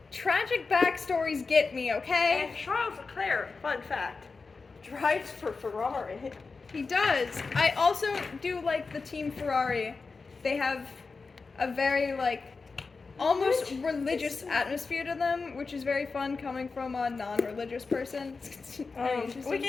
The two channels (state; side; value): quieter; right; 4.4 dB